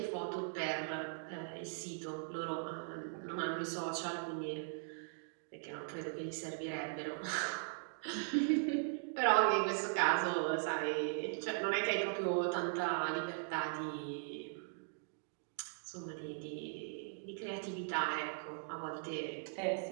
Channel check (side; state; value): left; silent; digital silence